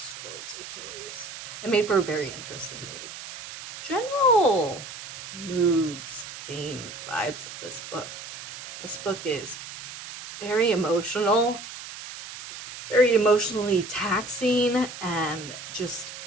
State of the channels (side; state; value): right; noise; hiss, 12 dB below the sound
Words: towards Achilles. It made for a very interesting read. General moods, themes, vibes of this book. This book is very emotional, very emotionally taxing, and just